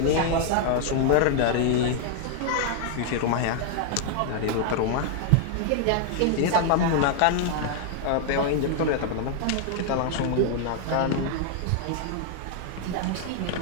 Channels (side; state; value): both; different; correlation 0.00